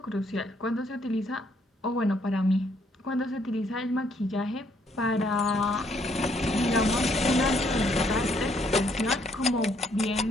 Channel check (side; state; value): both; normal; correlation 0.69